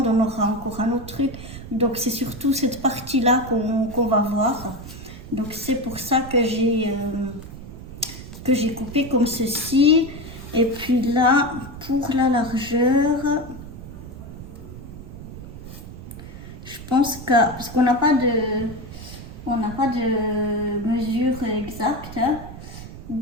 on aura encore un autre truc. Donc c'est surtout cette partie-là qu'on va voir. Donc c'est pour ça que j'ai coupé comme ceci. Et puis là, pour la largeur, je pense que, parce qu'on n'a pas de mesure exacte, hein,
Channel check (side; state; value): right; noise; rumble, 13 dB below the sound